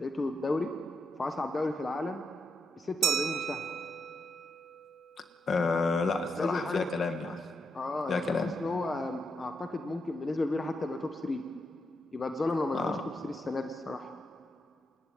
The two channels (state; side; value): normal; both; correlation 0.83